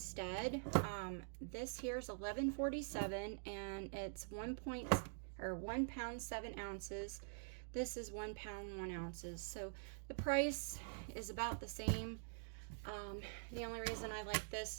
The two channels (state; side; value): silent; left; digital silence